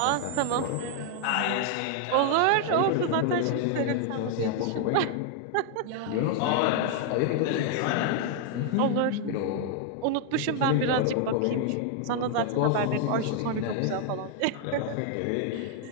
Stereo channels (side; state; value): both; different; correlation 0.00